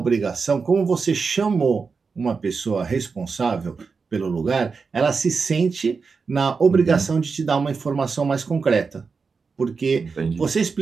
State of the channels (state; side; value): quieter; left; 5.0 dB